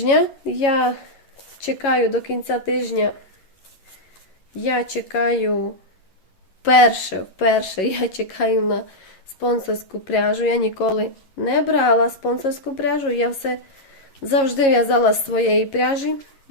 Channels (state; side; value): late; right; 11 ms